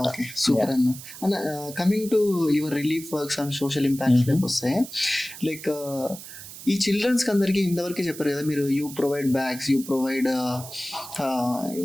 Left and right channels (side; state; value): right; noise; hiss, 14 dB below the sound